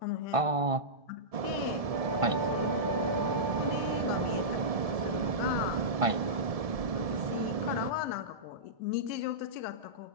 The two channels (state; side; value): late; left; 1.5 ms